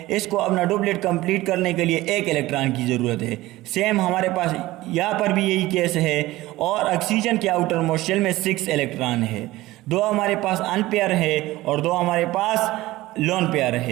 इसको अपना डुप्लेट कंप्लीट करने के लिए 1 इलेक्ट्रॉन की ज़रूरत है। सेम हमारे पास यहाँ पर भी यही केस है। और ऑक्सीजन के आउटर मोस्ट शेल में 6 इलेक्ट्रॉन है। 2 हमारे पास अनपेयर है और 2 हमारे पास लोन पेयर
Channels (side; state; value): left; quieter; 17.7 dB